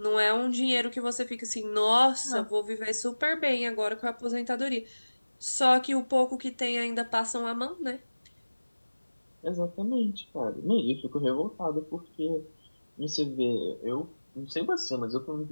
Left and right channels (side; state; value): both; inverted; correlation -1.00